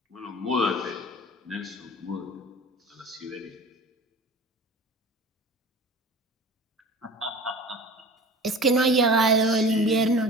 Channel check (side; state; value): both; normal; correlation 0.38